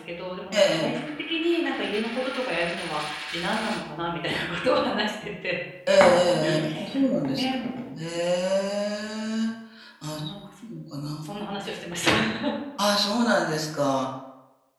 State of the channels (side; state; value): both; identical; correlation 1.00